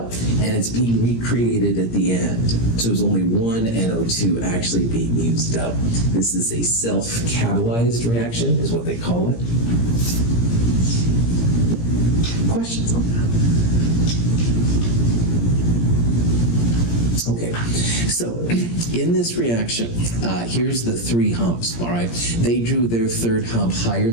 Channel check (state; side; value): late; right; 17 ms